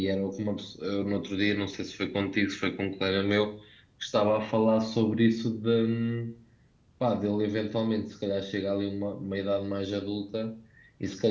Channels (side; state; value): both; identical; correlation 1.00